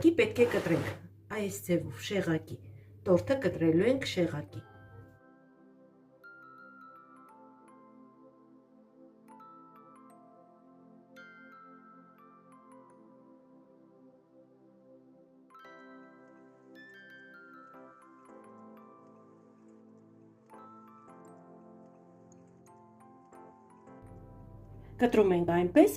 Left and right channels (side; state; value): both; identical; correlation 1.00